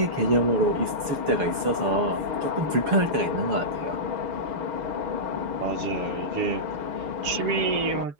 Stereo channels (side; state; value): left; late; 6.9 ms